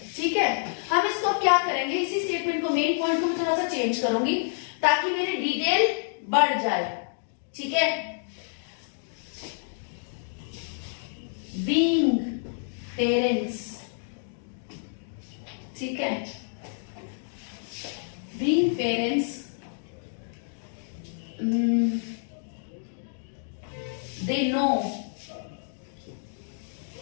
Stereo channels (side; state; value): right; silent; digital silence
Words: ठीक है। हम इसको क्या करेंगे, इसी स्टेटमेंट को, मेन पॉइंट को मैं थोड़ा सा चेंज करूंगी ताकि मेरी डिटेल बढ़ जाए, ठीक है। बीइंग पेरेंट्स, ठीक है, being parents they know